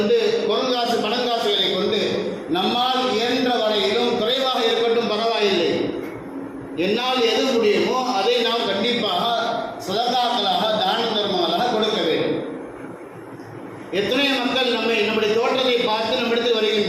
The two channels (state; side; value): identical; both; correlation 1.00